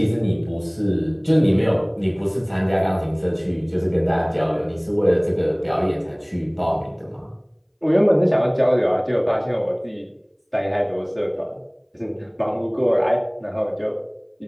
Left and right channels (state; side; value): identical; both; correlation 1.00